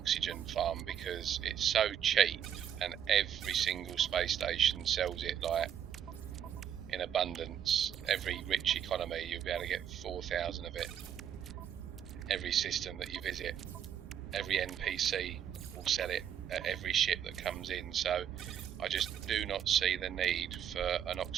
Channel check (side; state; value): left; quieter; 9.3 dB